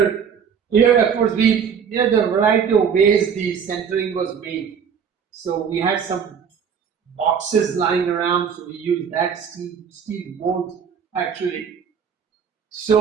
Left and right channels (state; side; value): quieter; left; 7.1 dB